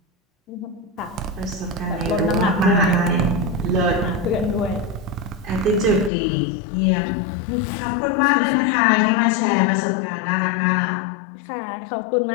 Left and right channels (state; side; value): drops out; right; at 6.1 s